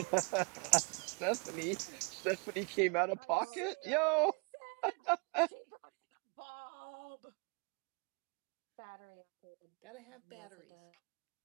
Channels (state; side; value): quieter; left; 34.3 dB